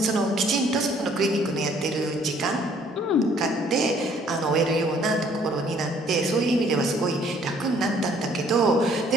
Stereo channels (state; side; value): normal; both; correlation 0.61